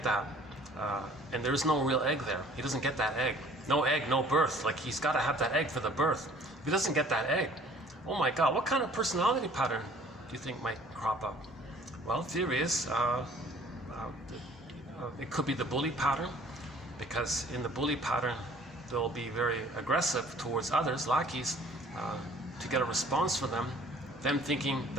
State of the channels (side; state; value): both; normal; correlation 0.53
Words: that, and there's no real egg there, he doesn't get that egg. No egg, no birth. Like, he's got to have that egg for the birth. If he doesn't get that egg, oh my God, what kind of personality pattern do you think might crop up? Well, theory is it could be the bully pattern, because in the bully pattern, they'll be very aggressive towards others, lackeys, to get a response from them thinking